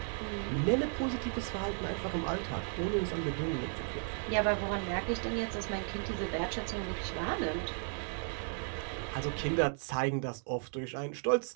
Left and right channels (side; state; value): left; silent; 55 dB below the other